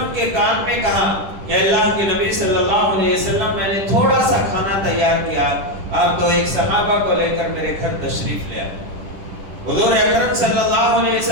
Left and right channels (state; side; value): late; left; 10 ms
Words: کے کان میں کہا کہ اللہ کے نبی صلی اللہ علیہ وسلم میں نے تھوڑا سا کھانا تیار کیا، آپ تو ایک صحابہ کو لے کر میرے گھر تشریف لے آئے۔ حضور اکرم صلی اللہ علیہ